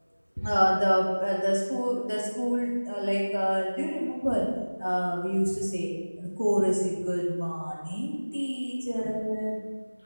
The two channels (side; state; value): both; inverted; correlation -1.00